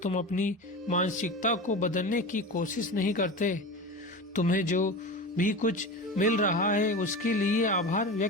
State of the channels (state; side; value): normal; both; correlation 0.28